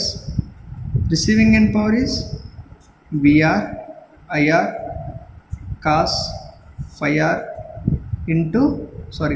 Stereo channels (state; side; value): identical; both; correlation 1.00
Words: Receiving end power is Vr Ir cos phi r into